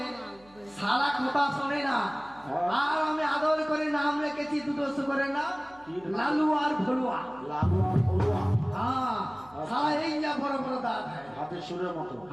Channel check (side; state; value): right; noise; hum, 27 dB below the sound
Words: সারা কথা শোনে না। আর আমি আদর করে নাম রেখেছি দুটো শুকরের নাম লালু আর ভলুয়া। লালু আর ভলুয়া। হ্যাঁ, সারা এই যা বড় বড় দাঁত, হাতের সুরের মতো।